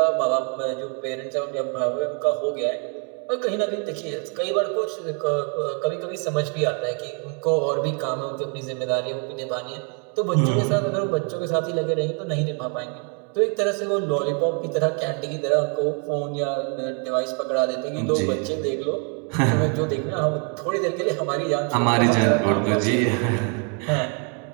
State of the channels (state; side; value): quieter; left; 39.4 dB